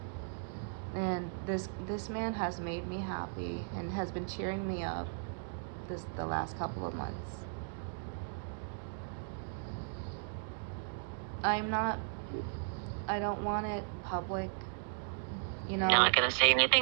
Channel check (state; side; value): silent; left; digital silence